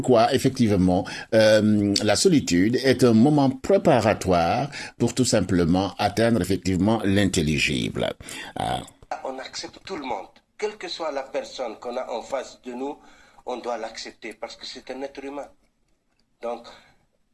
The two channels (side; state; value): both; identical; correlation 1.00